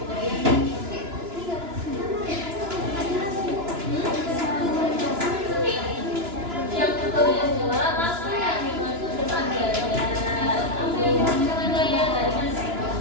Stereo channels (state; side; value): late; left; 2.9 ms